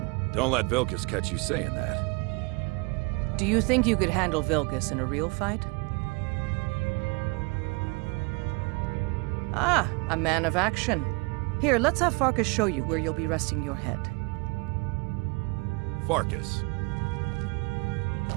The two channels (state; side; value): quieter; left; 28.9 dB